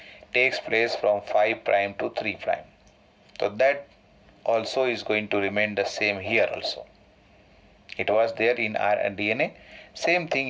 takes place from 5' to 3'. So that also is going to remain the same here also. It was there in our DNA. Same thing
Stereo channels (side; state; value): both; identical; correlation 1.00